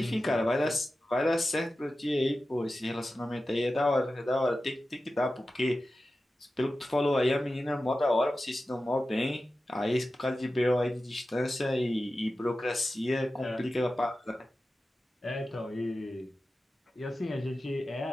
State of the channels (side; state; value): both; normal; correlation 0.94